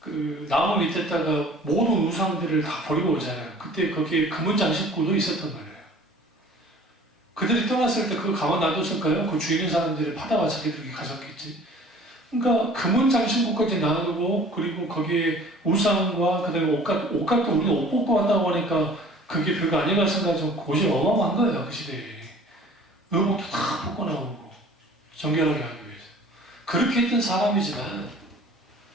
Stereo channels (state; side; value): normal; both; correlation 0.49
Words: 나무 밑에다가 모든 우상들을 다 버리고 오잖아요. 그때 거기에 금은 장식구도 있었단 말이에요. 그들이 떠났을 때 그거 가만 놔뒀을까요? 그 주위 있는 사람들이 파다가 자기들이 가졌겠지. 그러니까 금은 장식구까지 놔두고 그리고 거기에 우상과 그다음에 옷값도 우리가 옷 벗고 왔다고 하니까 그게 별거 아니라 생각하면 곳이 어마어마한 거예요. 그 시대에. 의복도 다 벗고 나오고 정결하게 하기 위해서. 그렇게 했던 사람이지만